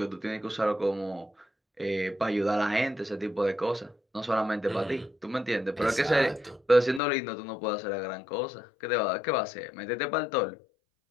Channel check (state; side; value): drops out; right; at 7.0 s